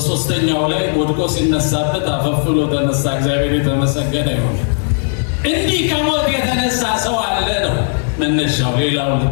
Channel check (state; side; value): silent; right; 60 dB below the other